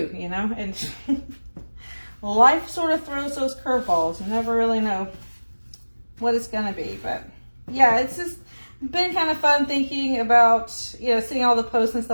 you know? And life sort of throws those curveballs. You never really know what it's going to be. But yeah, it's just been kind of fun thinking about, you know, seeing all the posts and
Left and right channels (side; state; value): both; inverted; correlation -1.00